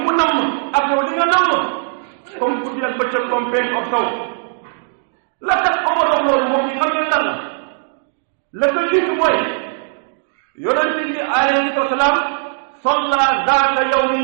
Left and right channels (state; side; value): silent; left; digital silence